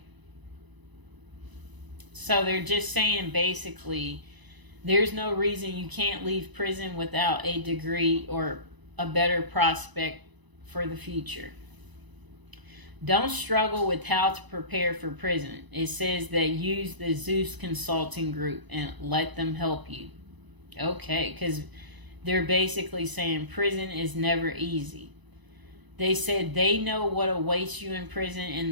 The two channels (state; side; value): late; left; 1.0 ms